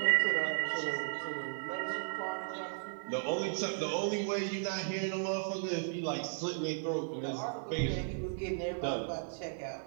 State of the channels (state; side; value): silent; left; 54 dB below the other